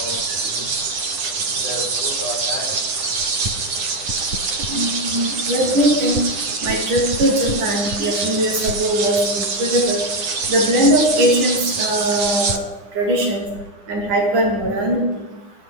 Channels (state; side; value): late; left; 9.8 ms